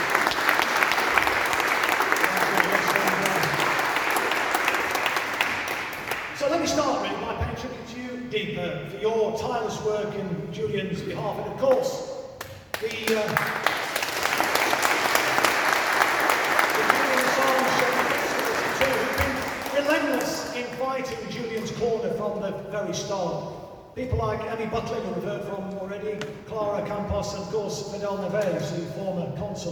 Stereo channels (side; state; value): both; identical; correlation 1.00